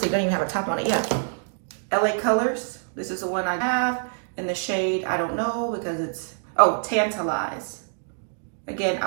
don't even have a top on it yet. LA Colors. This is the one I have in the shade, I don't know, because it's, oh, Tantalize. Again,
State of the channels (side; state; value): left; silent; digital silence